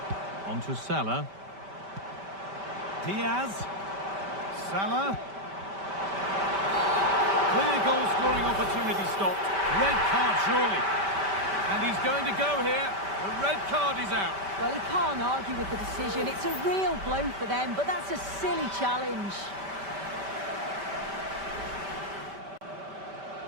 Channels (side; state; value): left; late; 5.1 ms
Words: On to Salah. Diaz. Salah. Clear goal-scoring opportunity stopped. Red card, surely. And he's going to go here. The red card is out. Well, he can't argue with the decision. It's a real blow for them, but that's a silly challenge.